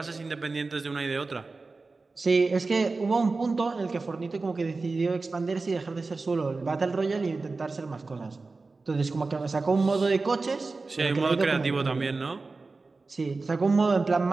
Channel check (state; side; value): quieter; left; 3.8 dB